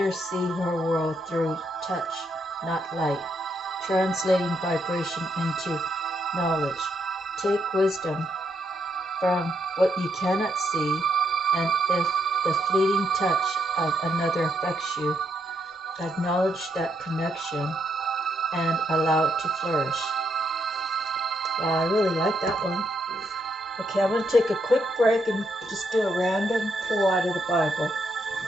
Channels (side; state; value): both; normal; correlation 0.77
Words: see her world through touch, not light, translating vibration into knowledge. Take wisdom from what you cannot see, and if the fleeting touch of another affects you, acknowledge that connection and allow it to flourish. Wow, I really like that one. Okay, I'm going to take a quick break and just do a random pull out of the Bible.